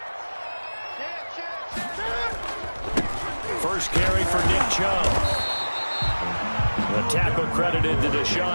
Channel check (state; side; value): inverted; both; correlation -1.00